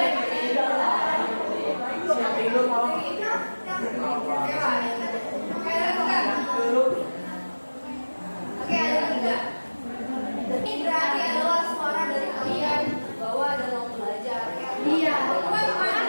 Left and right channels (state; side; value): inverted; both; correlation -1.00